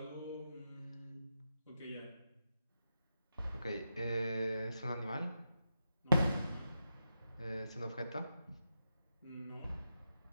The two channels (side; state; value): both; inverted; correlation -0.86